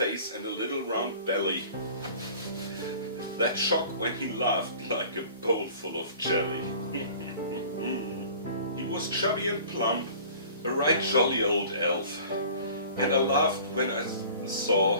and a little round belly, that shock when he laughed like a bowl full of jelly. He was chubby and plump, a right jolly old elf, and I laughed when I saw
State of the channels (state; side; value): inverted; both; correlation -0.46